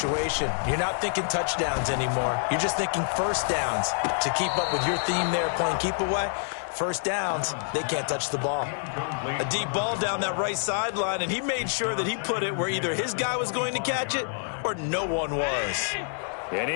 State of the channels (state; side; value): silent; right; digital silence